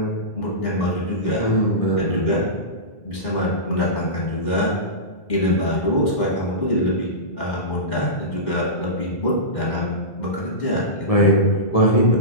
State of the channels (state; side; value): late; right; 2.1 ms